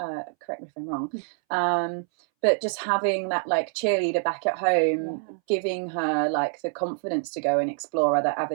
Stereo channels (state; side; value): silent; left; 61 dB below the other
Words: me if I'm wrong. But just having that, like, cheerleader back at home, giving her, like, the confidence to go and explore other